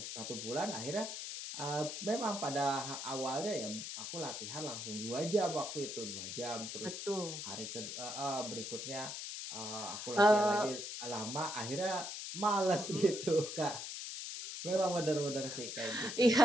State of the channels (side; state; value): left; noise; hiss, 6 dB below the sound